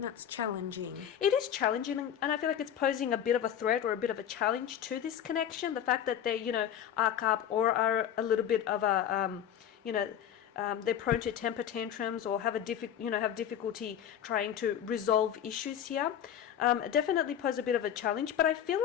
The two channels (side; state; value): right; quieter; 9.8 dB